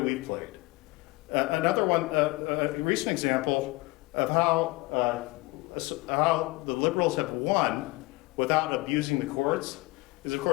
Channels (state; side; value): quieter; right; 22.6 dB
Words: we played. Another one, a recent example of how the liberals have won without abusing the courts is, of